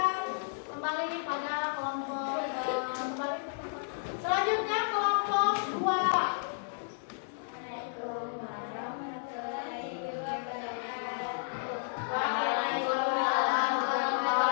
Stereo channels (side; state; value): right; silent; digital silence